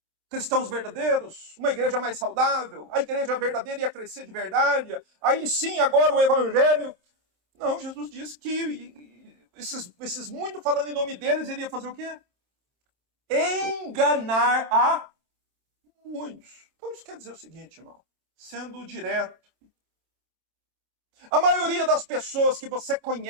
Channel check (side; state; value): left; late; 27 ms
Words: Cristãos verdadeiros, uma igreja mais saudável, a igreja verdadeira ia crescer de verdade, aí sim, agora o evangelho. Não, Jesus disse que esses muito falando em nome deles, ele ia fazer o quê? Enganar a muitos. Então isso quer dizer o seguinte, irmão, sendo direto. A maioria das pessoas que você